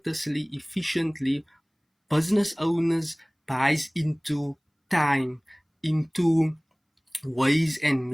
efficiently, business owners buys into time, into ways and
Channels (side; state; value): both; identical; correlation 1.00